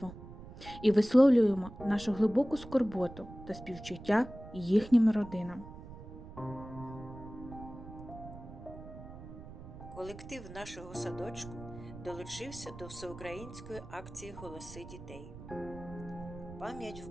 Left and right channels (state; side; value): noise; right; rumble, 14 dB below the sound